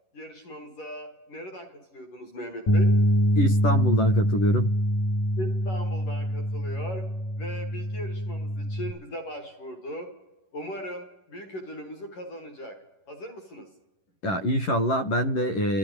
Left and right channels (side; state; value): right; late; 11 ms